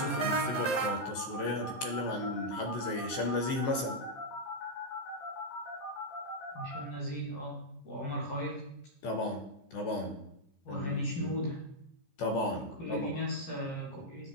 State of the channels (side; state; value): right; late; 14 ms